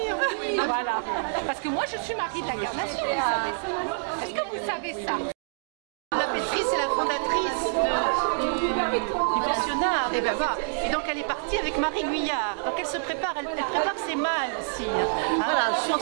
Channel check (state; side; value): silent; left; digital silence